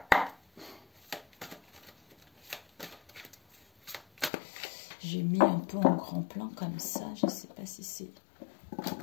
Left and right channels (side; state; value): right; drops out; at 4.3 s